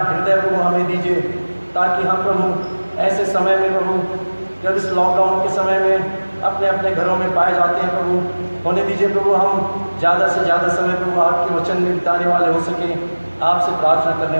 प्रभु हमें दीजिए ताकि हम प्रभु ऐसे समय में प्रभु जब इस लॉकडाउन के समय में अपने अपने घरों में पाए जाते हैं प्रभु, होने दीजिए प्रभु हम ज़्यादा से ज़्यादा समय प्रभु आपके वचन में बिताने वाले हो सकें, आपसे प्रार्थना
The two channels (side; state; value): both; inverted; correlation -1.00